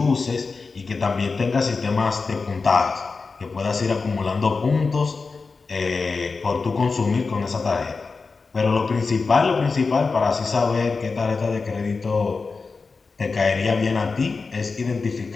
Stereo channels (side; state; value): right; quieter; 4.4 dB